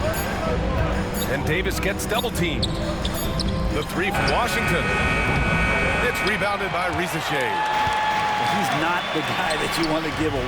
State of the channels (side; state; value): both; identical; correlation 1.00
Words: And Davis gets double teamed. The three from Washington. It's rebounded by Rizachet. He's not the guy that you want to give